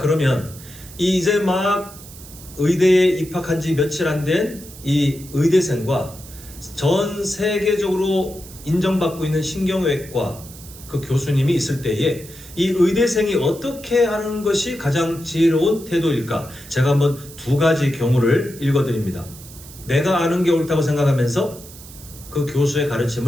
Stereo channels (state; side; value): noise; right; hiss, 18 dB below the sound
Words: 이제 막 의대에 입학한 지 며칠 안 된 이 의대생과 전 세계적으로 인정받고 있는 신경외과 그 교수님이 있을 때에 이 의대생이 어떻게 하는 것이 가장 지혜로운 태도일까? 제가 한번 두 가지 경우를 읽어드립니다. 내가 아는 게 옳다고 생각하면서 그 교수의